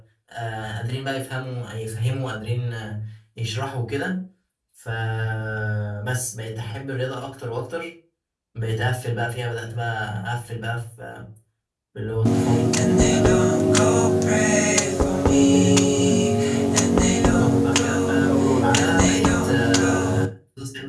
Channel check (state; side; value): identical; both; correlation 1.00